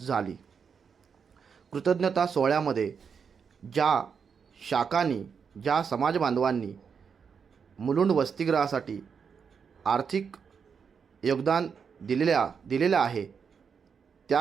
कृतज्ञता सोहळ्यामध्ये ज्या समाज बांधवांनी मुलुंड वसतिगृहासाठी आर्थिक योगदान दिलेले आहे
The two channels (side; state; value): left; quieter; 6.4 dB